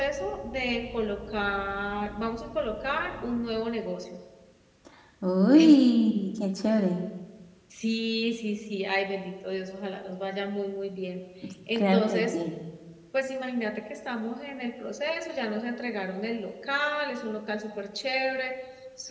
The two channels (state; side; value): identical; both; correlation 1.00